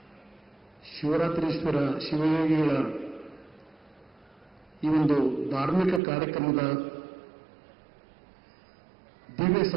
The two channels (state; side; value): drops out; left; at 6.0 s